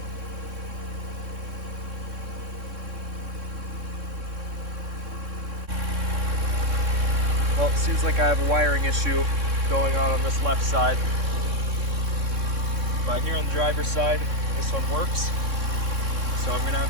Well, it seems like I have a wiring issue going on this left side, but here on the driver's side, this one works. So I'm gonna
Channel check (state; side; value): late; left; 3.6 ms